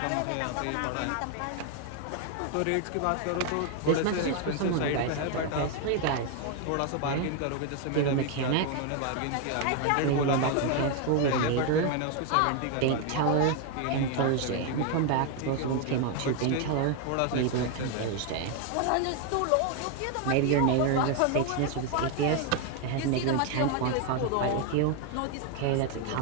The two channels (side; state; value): both; different; correlation 0.01